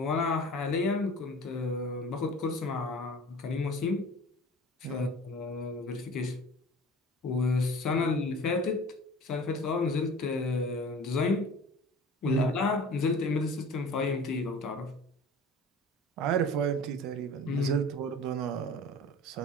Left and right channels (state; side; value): normal; both; correlation 0.41